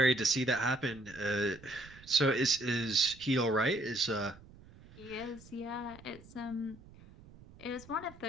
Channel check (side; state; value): right; noise; rumble, 21 dB below the sound